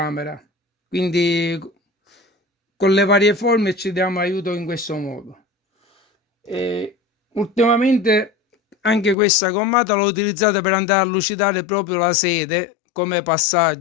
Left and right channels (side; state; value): right; drops out; at 9.2 s